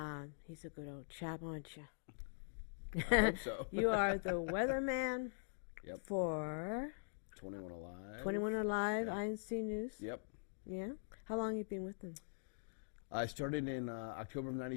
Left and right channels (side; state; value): right; silent; digital silence